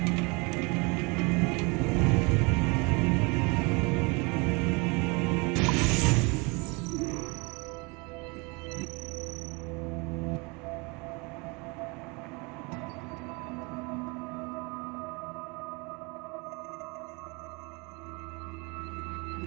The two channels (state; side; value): quieter; left; 28.7 dB